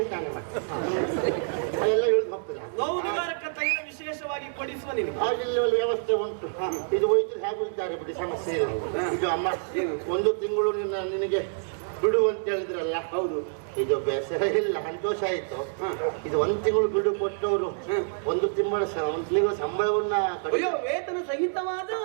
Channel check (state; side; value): silent; left; digital silence